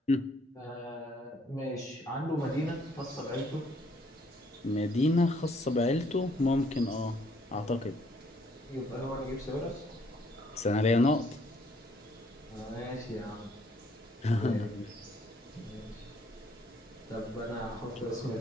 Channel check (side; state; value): both; normal; correlation 0.65